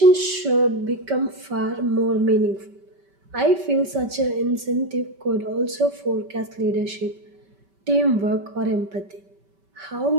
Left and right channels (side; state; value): left; late; 5.2 ms